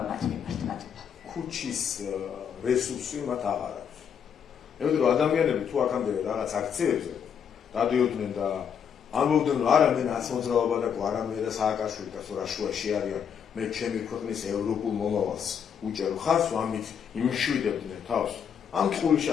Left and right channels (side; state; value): right; quieter; 7.7 dB